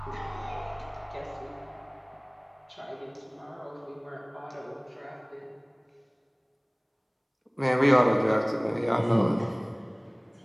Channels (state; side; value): identical; both; correlation 1.00